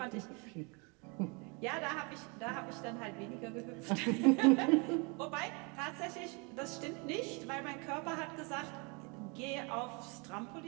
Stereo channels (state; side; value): quieter; left; 31.5 dB